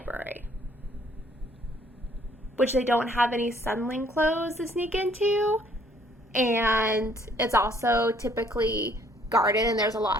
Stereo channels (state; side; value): normal; both; correlation 0.62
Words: which they don't have any Sunling clothes to sneak into, and it's also typically guarded, and there's a lot